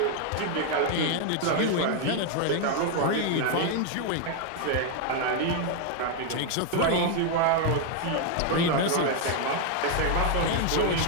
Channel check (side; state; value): both; different; correlation 0.01